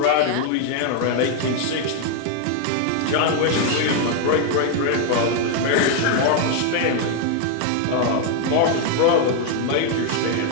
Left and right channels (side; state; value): both; different; correlation 0.00